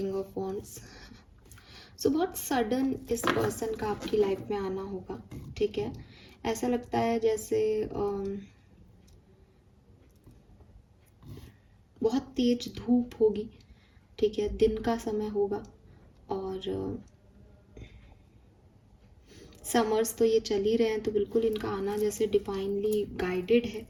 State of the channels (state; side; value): identical; both; correlation 1.00